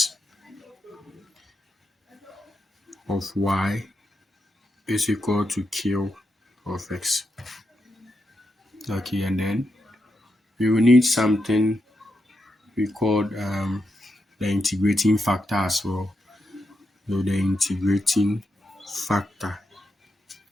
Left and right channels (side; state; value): both; normal; correlation 0.85